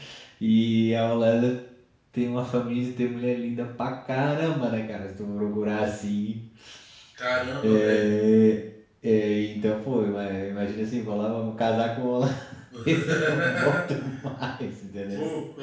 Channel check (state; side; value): identical; both; correlation 1.00